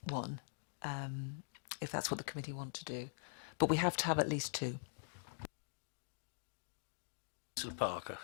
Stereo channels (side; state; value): right; silent; digital silence